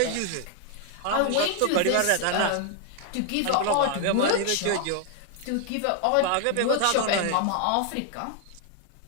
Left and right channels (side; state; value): both; different; correlation 0.00